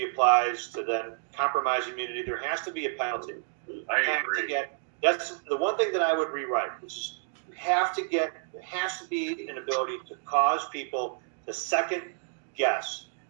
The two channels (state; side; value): silent; left; 58 dB below the other